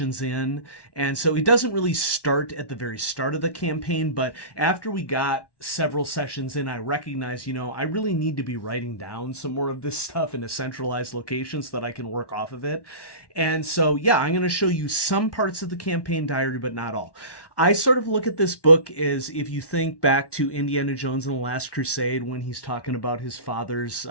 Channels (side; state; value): right; late; 1.1 ms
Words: in, and so it doesn't really start at the very start of the campaign. But after we got several sessions in, I recognized, I really need to be writing down some more of this stuff in a centralized location so that I can work off of it. And so I'm going to show you some parts of the campaign diary, but not all. I sort of look at this book as, if you think back to Indiana Jones and the Last Crusade, when he's talking about his father's